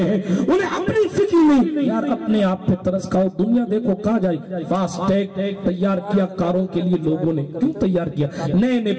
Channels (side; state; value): both; identical; correlation 1.00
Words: ہیں، انہیں اپنی فکر نہیں. یار اپنے آپ پہ ترس کھاؤ، دنیا دیکھو کہاں جائے. فاسٹ ٹیگ تیار کیا کاروں کے لیے لوگوں نے، کیوں تیار کیا؟ نئے نئے